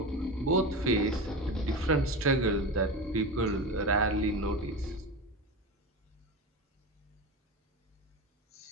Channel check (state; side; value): normal; both; correlation 0.24